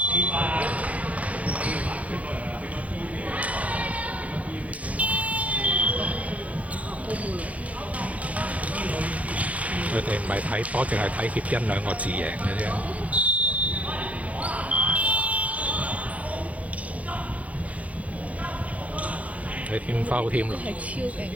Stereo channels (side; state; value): left; late; 0.067 ms